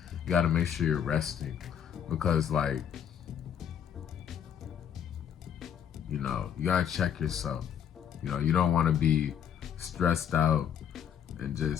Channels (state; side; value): quieter; right; 8.8 dB